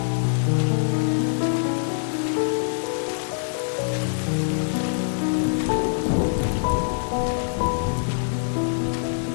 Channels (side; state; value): right; silent; digital silence